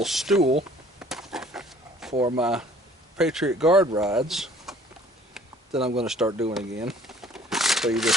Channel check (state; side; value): normal; both; correlation 0.55